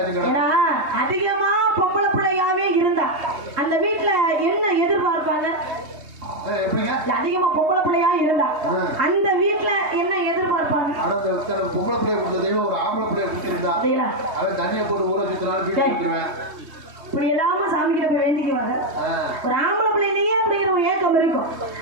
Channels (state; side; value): late; left; 3.2 ms